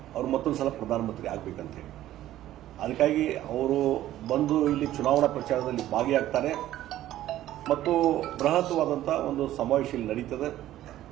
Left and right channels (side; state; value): left; quieter; 13.6 dB